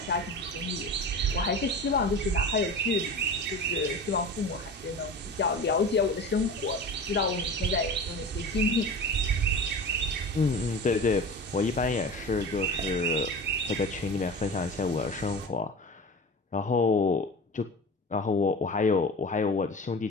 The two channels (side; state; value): both; normal; correlation 0.33